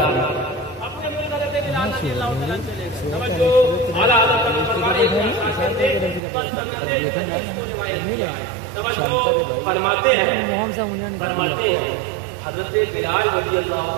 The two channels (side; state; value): left; drops out; at 6.2 s